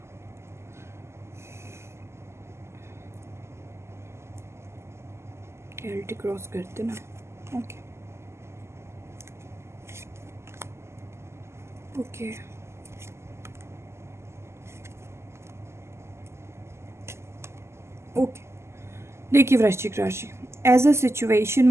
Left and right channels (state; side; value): late; left; 0.13 ms